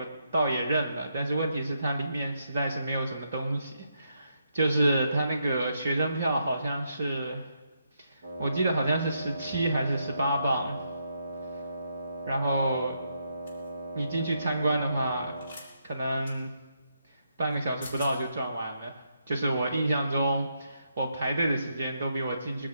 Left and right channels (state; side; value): inverted; both; correlation -0.79